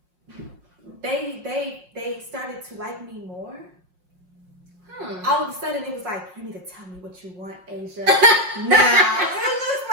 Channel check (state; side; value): late; left; 5.5 ms